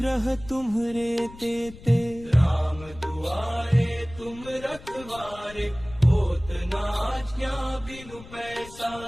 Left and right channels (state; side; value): noise; left; rumble, 17 dB below the sound